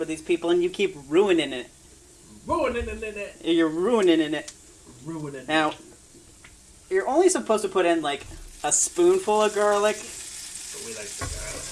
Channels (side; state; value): both; identical; correlation 1.00